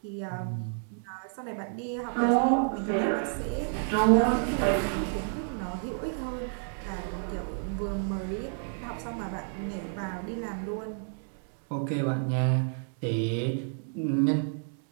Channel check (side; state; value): left; silent; digital silence